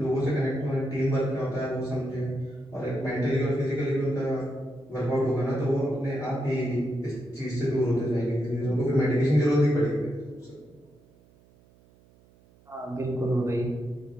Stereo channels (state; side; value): noise; right; hum, 29 dB below the sound